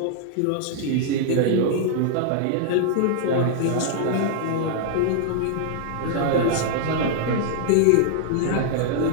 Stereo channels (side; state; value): both; different; correlation -0.01